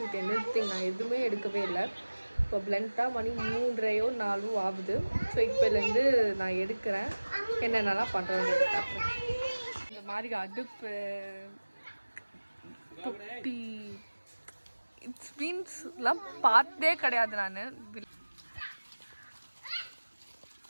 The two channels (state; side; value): inverted; both; correlation -1.00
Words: anything. நான் எதுவுமே எடுக்கவே இல்லை. இப்போ பிளண்ட்டாக மணி 3:30 4 ஆகுது. ஸோ இப்போலேருந்து நான் எடுக்கிறேன், என்னென்னலாம் பண்ணுறேன்னு பார்க்குறேன். இந்த மாதிரி அடுப்பு தொட்டி இட்ஸ் மீன்ஸ்லாம் பார்த்தே கிடையாது நான்.